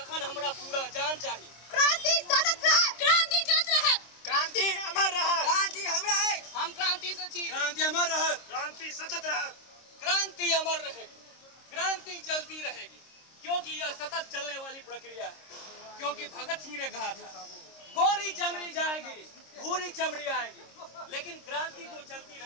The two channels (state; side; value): late; right; 26 ms